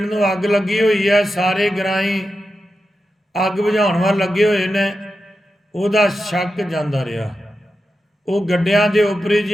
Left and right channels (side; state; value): both; normal; correlation 0.90